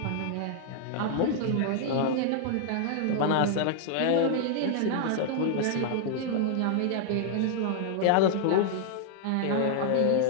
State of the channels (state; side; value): different; both; correlation 0.00